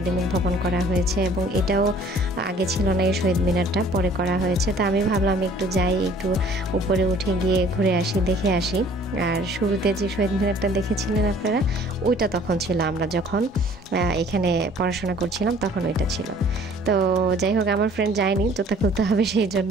ভবন করা হয়েছে, এবং এটাও আগে ছিল না, এই শহীদ মিনারটা পরে করা হয়েছে। তো আমি ভাবলাম একটু যাই, একটু উপরে উঠে গিয়ে ঘুরে আসি, দেখে আসি। আর শুরুতে যে শহীদ মিনারটা দেখেছিলেন আপনারা, ওইটা তখন ছিল, আমরা যখন এখানে পড়াশোনা করছিলাম তখন ওইটা ছিল। তো যাই হোক আমার ফ্রেন্ড যায়নি, জুতা খুলতে হবে সেই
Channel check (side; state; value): both; normal; correlation 0.54